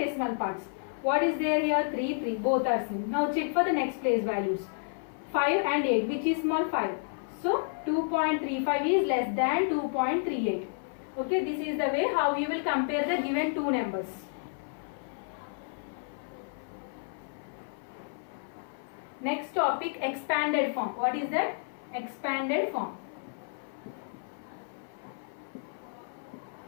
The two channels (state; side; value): silent; right; 56 dB below the other